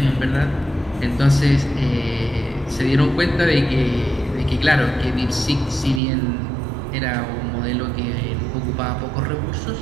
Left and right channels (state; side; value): drops out; left; at 6.0 s